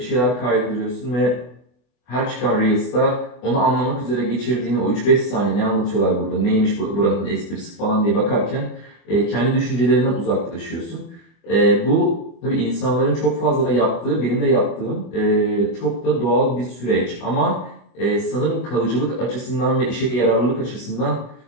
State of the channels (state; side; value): late; right; 24 ms